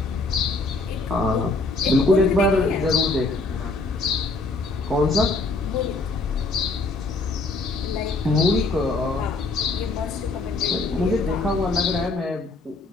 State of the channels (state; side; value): quieter; right; 3.4 dB